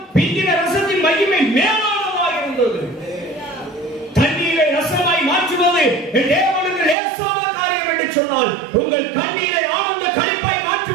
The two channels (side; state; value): left; drops out; at 7.0 s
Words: பிந்தின ரசத்தின் மகிமை மேலானதாக இருந்தது. தண்ணீரை ரசமாய் மாற்றுவது தேவனுக்கு லேசான காரியம் என்று சொன்னால், உங்கள் கண்ணீரை ஆனந்த களிப்பாய்